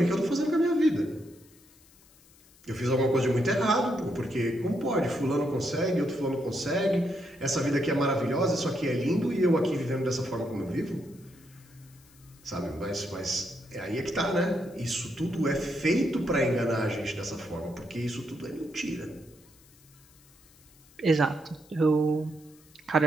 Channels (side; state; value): left; noise; hiss, 27 dB below the sound